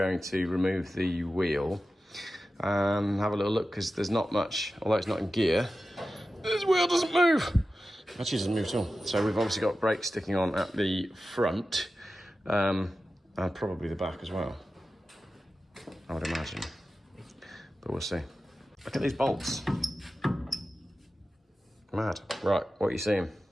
to remove the wheel and have a little look, because there's not much, although it's not in gear, this wheel doesn't move. Actually, it doesn't move at all. So we've obviously got brakes sticking on at the front, and probably the back as well, I would imagine. But we'll see. Look at these bolts. Mad. Right, what are you seeing?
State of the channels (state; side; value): normal; both; correlation 0.93